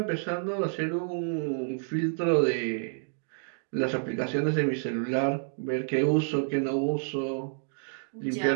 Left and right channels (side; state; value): left; silent; digital silence